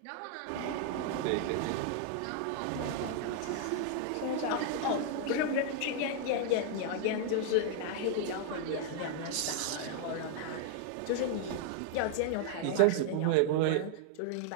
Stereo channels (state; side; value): different; both; correlation 0.00